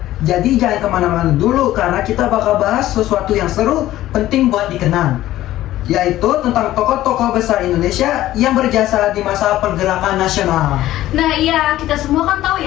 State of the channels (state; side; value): quieter; right; 14.6 dB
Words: Jadi jangan kemana-mana dulu, karena kita bakal bahas sesuatu yang seru, penting buat dikenang, yaitu tentang tokoh-tokoh besar Indonesia yang berjasa di masa pergerakan nasional. Nah iya, kita semua kan tahu